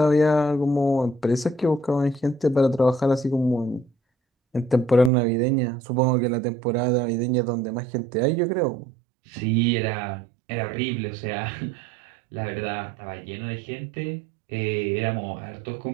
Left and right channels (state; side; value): drops out; left; at 5.1 s